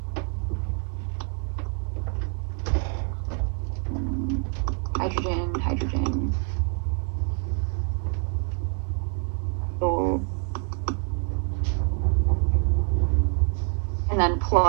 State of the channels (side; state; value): left; quieter; 37.7 dB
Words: hydrogen, hydrogen, ethyl, and then